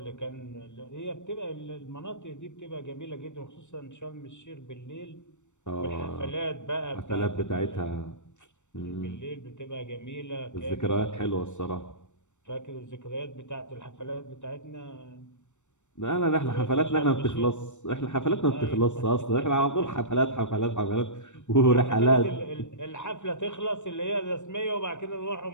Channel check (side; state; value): right; late; 0.84 ms